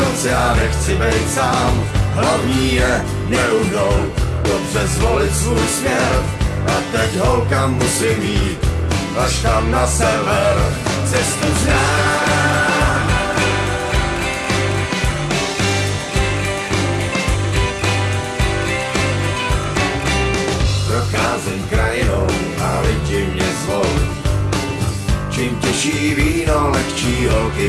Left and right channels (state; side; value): identical; both; correlation 1.00